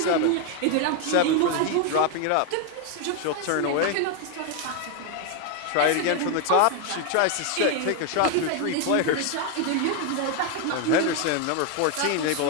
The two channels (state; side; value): different; both; correlation 0.01